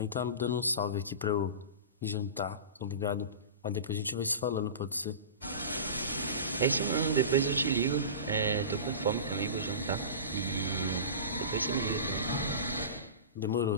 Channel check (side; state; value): both; inverted; correlation -0.32